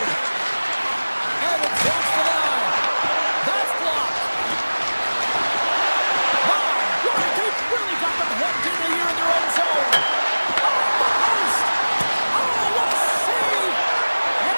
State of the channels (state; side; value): inverted; both; correlation -1.00